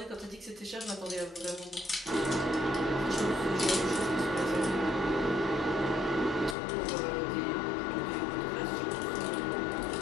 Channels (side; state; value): right; drops out; at 6.6 s